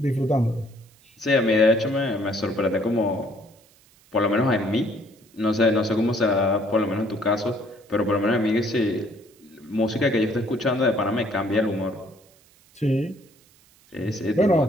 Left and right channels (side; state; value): right; noise; hiss, 30 dB below the sound